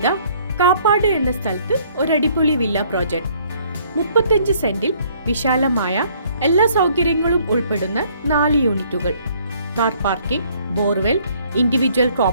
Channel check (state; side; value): inverted; both; correlation -0.62